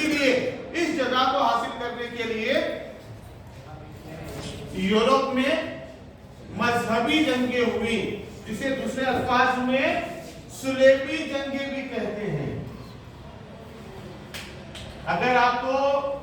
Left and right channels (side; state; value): both; identical; correlation 1.00